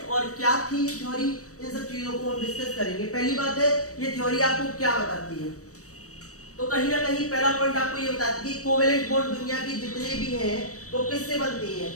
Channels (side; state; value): right; late; 0.65 ms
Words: और क्या थी theory, इन सब चीजों को हम discuss करेंगे. पहली बात है, ये थ्योरी आपको क्या बताती है? तो कहीं ना कहीं पहला पॉइंट आपको ये बताती है कि कोवेलेंट बॉन्ड दुनिया की जितने भी हैं वो किससे बनती हैं.